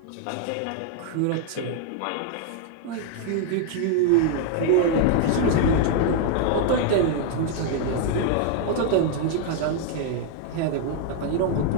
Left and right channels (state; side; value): different; both; correlation 0.00